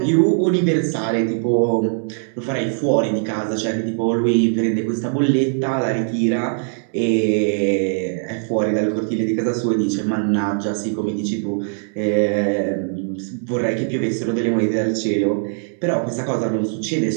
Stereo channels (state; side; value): silent; left; 65 dB below the other